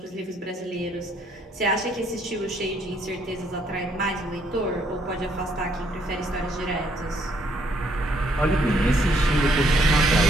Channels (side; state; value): both; normal; correlation 0.69